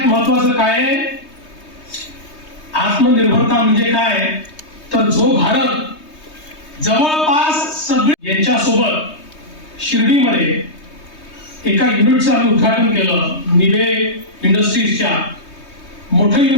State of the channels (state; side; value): late; right; 3.2 ms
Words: महत्वाचं काय आहे, आत्मनिर्भरता म्हणजे काय, तर जो भारत जवळपास सगळे यांच्यासोबत शिर्डीमध्ये एका युनिटचं आम्ही उद्घाटन केलं. निबे इंडस्ट्रीजच्या मोठं